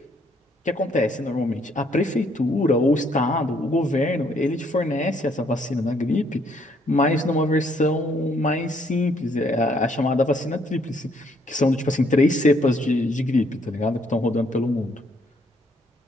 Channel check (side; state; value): both; normal; correlation 0.68